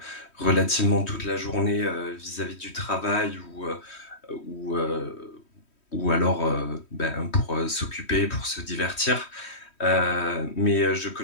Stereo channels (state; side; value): late; right; 3.1 ms